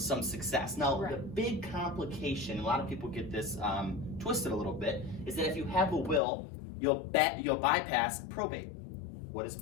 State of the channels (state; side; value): drops out; right; at 6.2 s